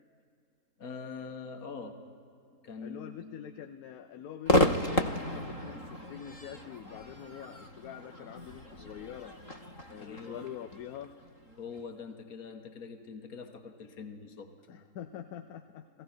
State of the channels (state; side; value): late; right; 3.8 ms